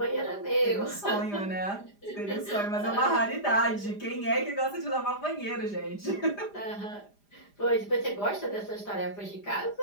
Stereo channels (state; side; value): late; right; 5.0 ms